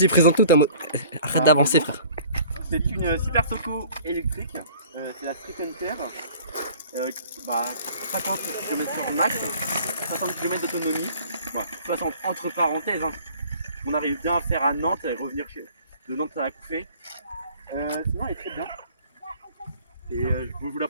présente-nous ta moto. Arrête d'avancer, frère. C'est une Super Soco électrique. C'est la Street Hunter. 50 km/h max, 60 km d'autonomie. 60 entre parenthèses. On arrive bien à faire à Nantes et revenir de Nantes à la Couffée. Sinon, elle est très bien. Et je vais vous la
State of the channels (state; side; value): inverted; both; correlation -0.51